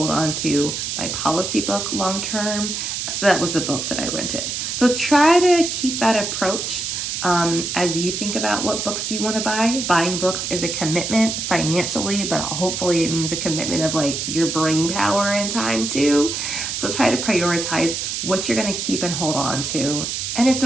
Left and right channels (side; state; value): right; noise; hiss, 3 dB below the sound